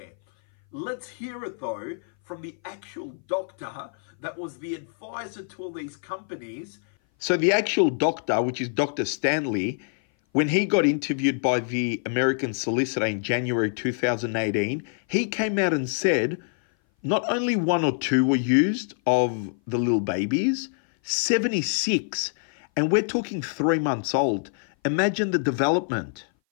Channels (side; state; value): right; silent; 58 dB below the other